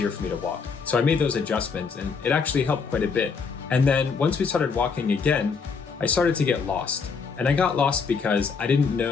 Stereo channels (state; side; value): quieter; right; 5.3 dB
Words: for me to walk. So I made those adjustments and it actually helped quite a bit. And then once we started walking again, I started to get lost. And I got lost because I didn't